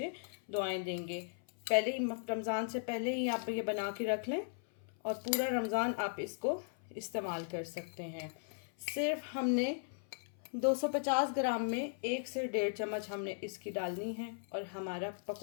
दुआएं देंगे। पहले ही रमज़ान से पहले ही आप ये बना के रख लें और पूरा रमज़ान आप इसको इस्तेमाल कर सकते हैं। सिर्फ हमने 250 ग्राम में 1 से 1.5 चम्मच हमने इसकी डालनी है और हमारा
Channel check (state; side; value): silent; right; 53 dB below the other